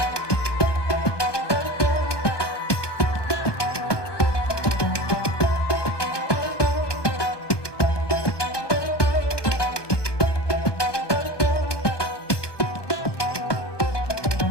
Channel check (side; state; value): right; late; 1.2 ms